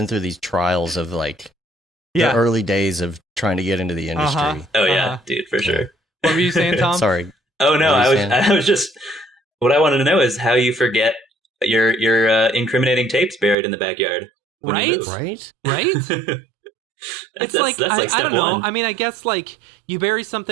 through these trials of like the early days of trying to get into the industry. Oh yeah, dude, for sure. What were you saying, Tom? Sorry. Oh no, I was just. What I wanted to know is how you forget your incriminating tapes buried in the backyard. Right. It's like, I don't know. I mean, I guess like you bury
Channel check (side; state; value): left; drops out; at 13.6 s